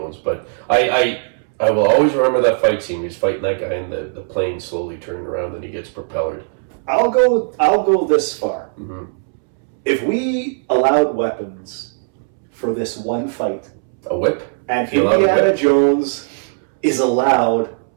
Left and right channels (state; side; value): silent; left; 67 dB below the other